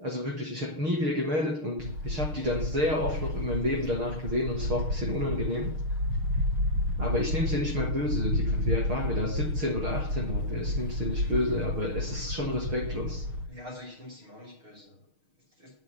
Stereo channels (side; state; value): left; late; 6.5 ms